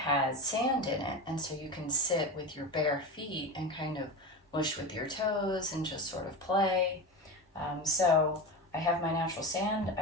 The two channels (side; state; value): both; normal; correlation 0.23